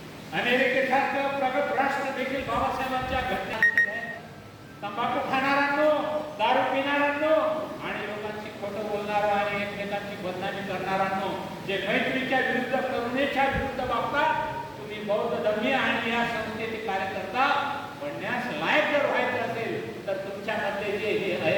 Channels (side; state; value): both; identical; correlation 1.00